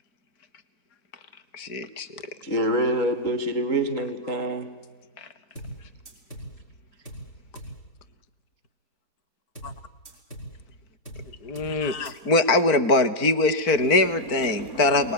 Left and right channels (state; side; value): late; right; 4.5 ms